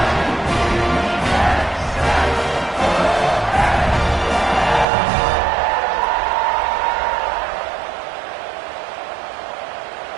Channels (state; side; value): drops out; left; at 4.9 s